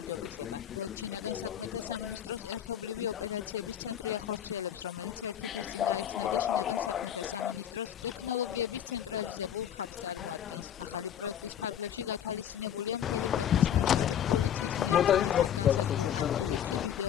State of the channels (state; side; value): quieter; right; 9.7 dB